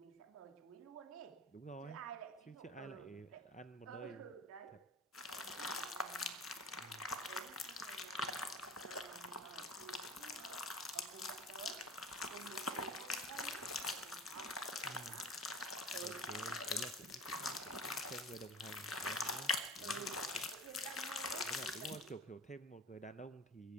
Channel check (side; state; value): both; normal; correlation 0.38